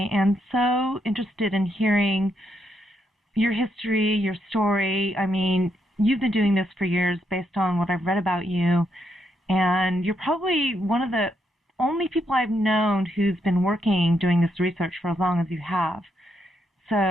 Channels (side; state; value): both; normal; correlation 0.78